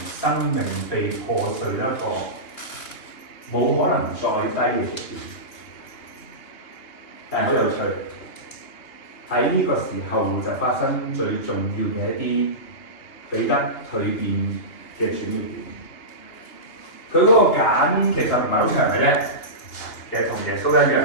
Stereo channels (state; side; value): late; right; 2.8 ms